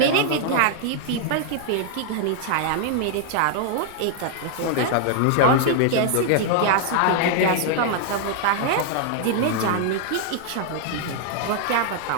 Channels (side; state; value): both; different; correlation 0.00